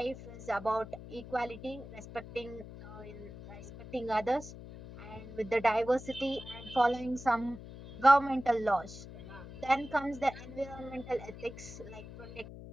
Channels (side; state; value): left; noise; hum, 13 dB below the sound